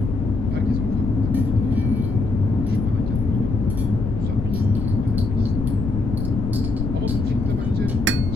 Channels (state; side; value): noise; left; rumble, 3 dB below the sound